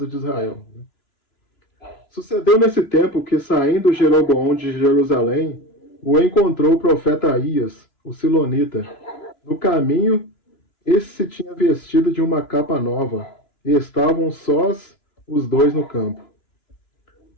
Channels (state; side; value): late; right; 3.0 ms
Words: de Israel. Sucedeu nesse tempo que, saindo Jeroboão de Jerusalém, o encontrou o profeta Aías, o silonita. No caminho, esse se tinha vestido de uma capa nova, e estavam sós os dois no campo.